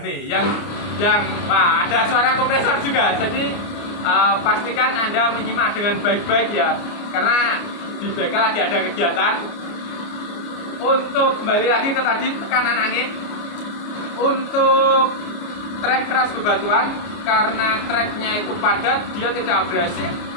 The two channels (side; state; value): right; late; 29 ms